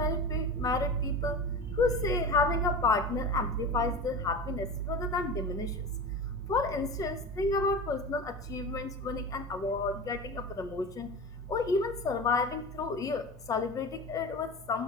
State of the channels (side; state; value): both; normal; correlation 0.29